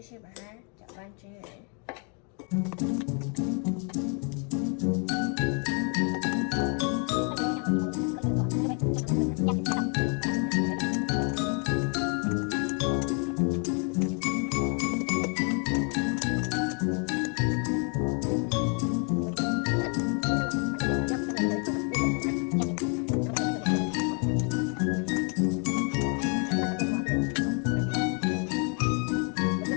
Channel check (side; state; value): right; quieter; 38.6 dB